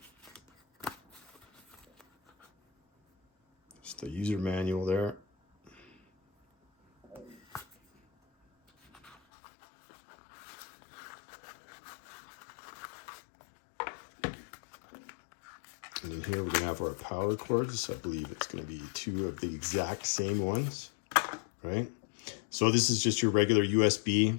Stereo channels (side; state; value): right; drops out; at 9.2 s